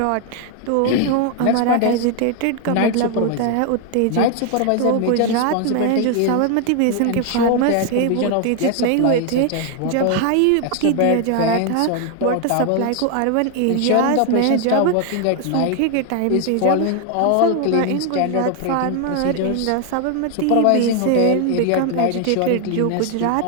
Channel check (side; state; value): both; different; correlation 0.01